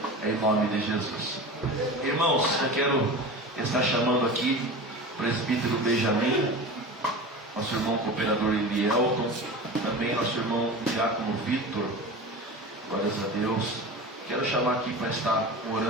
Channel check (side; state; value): both; normal; correlation 0.32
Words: em nome de Jesus. Irmãos, eu quero estar chamando aqui o presbítero Benjamin, nosso irmão cooperador Elielton, também nosso irmão Diácono Vitor. Glórias a Deus. Quero chamar aqui para estar